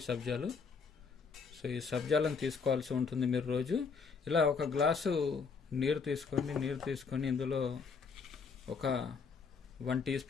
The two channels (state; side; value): quieter; right; 5.4 dB